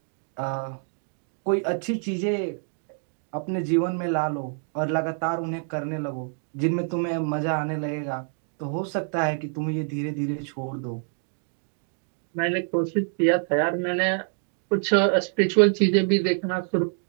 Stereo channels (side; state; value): left; silent; 55 dB below the other